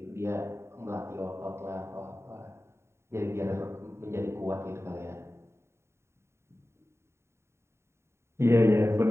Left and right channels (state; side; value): late; left; 0.13 ms